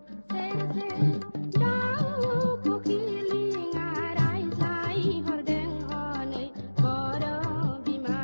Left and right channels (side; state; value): both; inverted; correlation -1.00